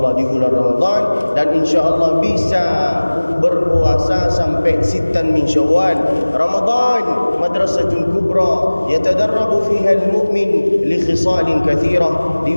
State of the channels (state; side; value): inverted; both; correlation -1.00